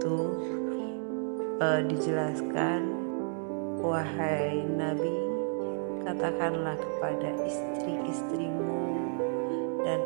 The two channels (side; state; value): left; silent; 57 dB below the other